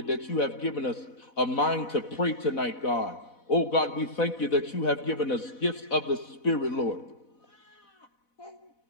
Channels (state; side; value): late; right; 4.1 ms